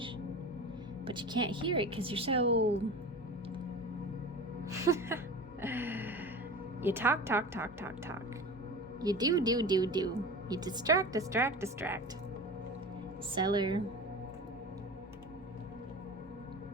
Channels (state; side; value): normal; both; correlation 0.33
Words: But you can't hear it because you're so... You talk. You do. You distract. Cellar.